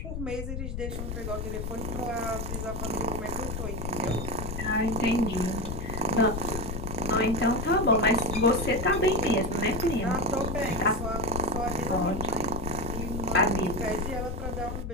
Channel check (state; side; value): noise; left; rumble, 5 dB below the sound